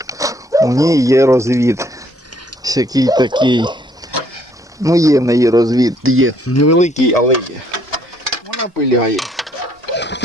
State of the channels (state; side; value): normal; both; correlation 0.66